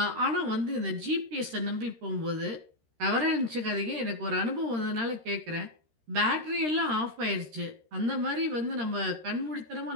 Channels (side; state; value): left; late; 13 ms